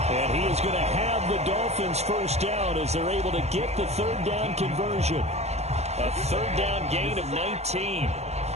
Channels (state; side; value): late; left; 0.31 ms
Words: And he is going to have the Dolphins first down as they're able to get the third down conversion. A third down gain of 19.